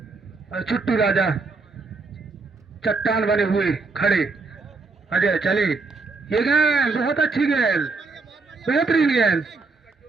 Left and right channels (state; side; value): quieter; left; 3.9 dB